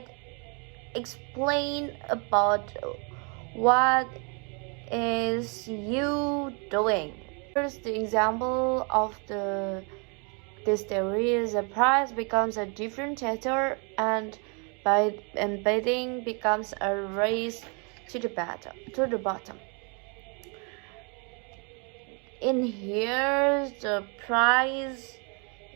explains about what is you doing. Here's the example of this theory is a price becomes a differentiator, and by embedding becomes a race to the bottom. In here, the price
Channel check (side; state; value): left; quieter; 35.2 dB